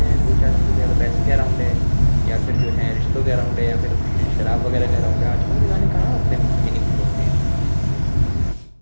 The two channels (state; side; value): inverted; both; correlation -1.00